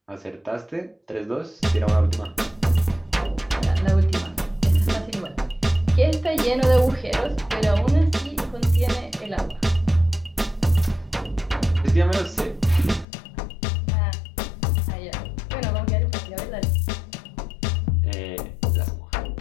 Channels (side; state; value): right; drops out; at 13.1 s